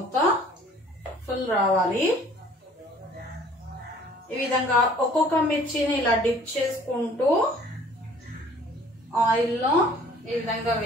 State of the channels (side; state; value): both; normal; correlation 0.54